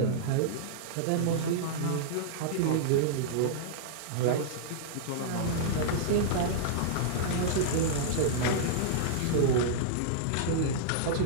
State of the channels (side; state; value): both; different; correlation -0.02